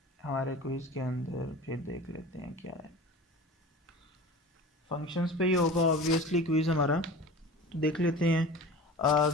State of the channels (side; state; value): both; normal; correlation 0.36